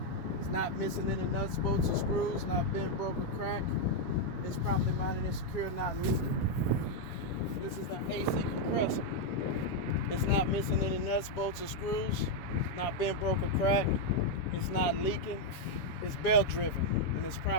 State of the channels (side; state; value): right; late; 7.2 ms